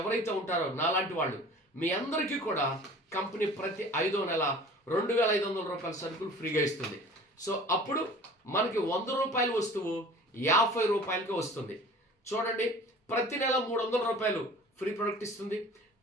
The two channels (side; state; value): both; normal; correlation 0.44